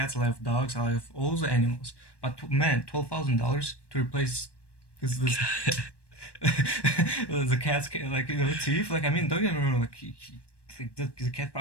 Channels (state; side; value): late; right; 1.1 ms